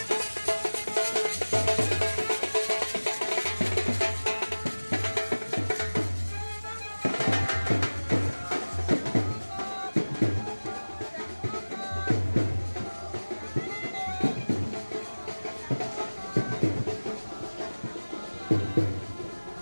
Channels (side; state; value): both; inverted; correlation -1.00